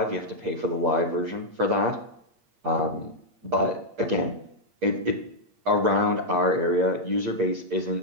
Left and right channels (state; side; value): late; left; 8.6 ms